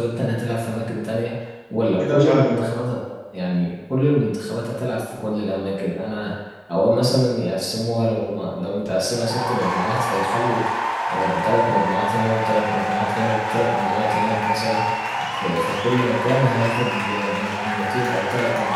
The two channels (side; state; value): both; identical; correlation 1.00